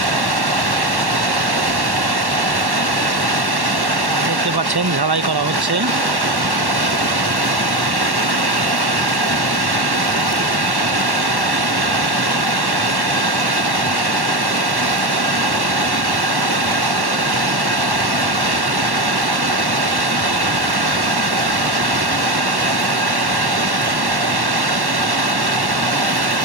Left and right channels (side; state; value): left; late; 1.1 ms